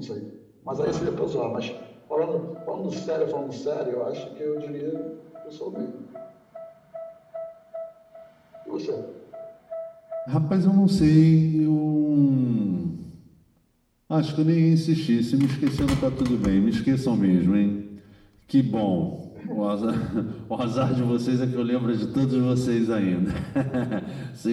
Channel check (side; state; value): both; identical; correlation 1.00